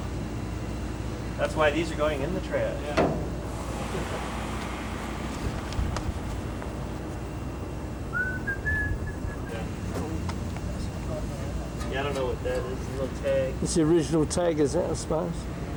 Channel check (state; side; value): identical; both; correlation 1.00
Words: That's why these are going in the trash. Yeah. Yeah, I don't know what that is. A little tag. It's the original tag, is it, I suppose?